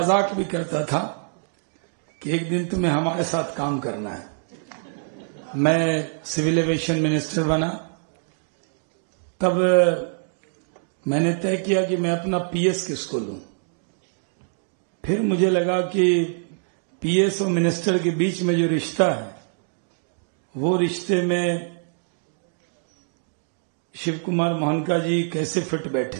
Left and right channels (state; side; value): silent; left; digital silence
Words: भी करता था कि एक दिन तुम्हें हमारे साथ काम करना है। मैं सिविल एविएशन मिनिस्टर बना तब मैंने तय किया कि मैं अपना पीएस किसको लूं। फिर मुझे लगा कि पीएस और मिनिस्टर के बीच में जो रिश्ता है वो रिश्ते में शिव कुमार मोहनका जी कैसे फिट